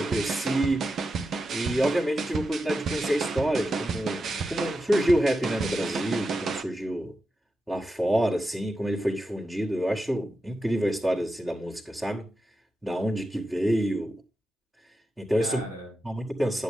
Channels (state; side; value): normal; both; correlation 0.90